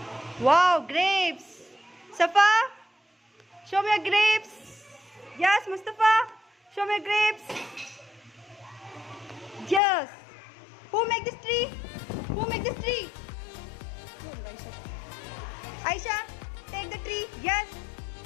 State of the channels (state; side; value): drops out; right; at 9.8 s